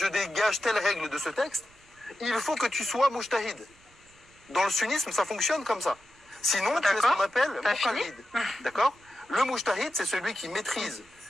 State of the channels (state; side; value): noise; right; rumble, 29 dB below the sound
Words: dégage telle règle de ce texte, il faut que tu sois mujtahid. Dans le sunnisme, ça fonctionne comme ça. Sinon, tu es ce qu'on appelle muqallid. D'accord? Le mujtahid, c'est celui qui maîtrise.